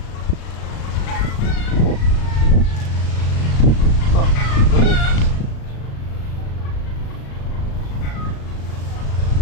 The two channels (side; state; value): right; late; 36 ms